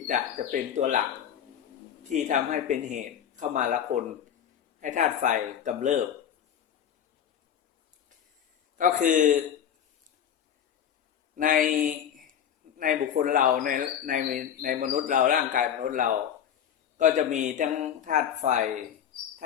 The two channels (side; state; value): right; quieter; 9.2 dB